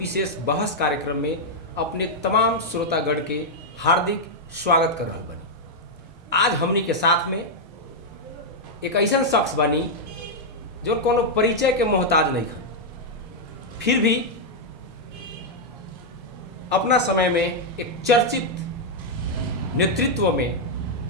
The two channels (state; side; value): normal; both; correlation -0.03